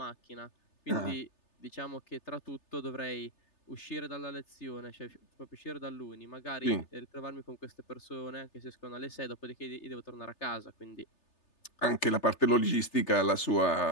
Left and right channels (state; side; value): late; right; 3.3 ms